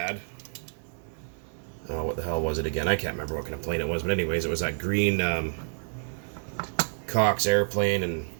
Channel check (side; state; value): left; silent; 57 dB below the other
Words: Oh, what the hell was it again? I can't remember what kind of plane it was, but anyways, it was that green Cox airplane, and